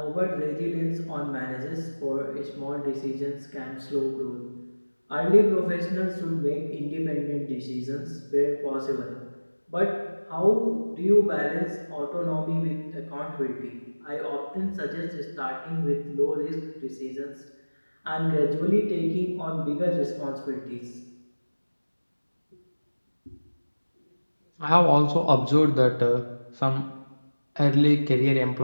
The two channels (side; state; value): both; inverted; correlation -1.00